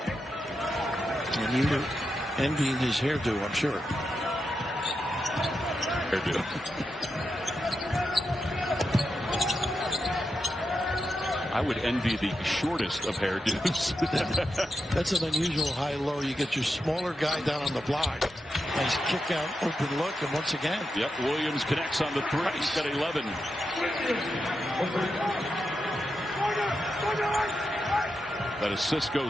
And you were envying his hairdo, I'm sure. Hairdo. I would envy the shortest of hairdos. That's an unusual high-low. You get your smaller guy down on the block. Nice kick out, open look, and once again. Yep, Williams connects on the three. He's got 11. That assist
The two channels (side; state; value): both; normal; correlation 0.87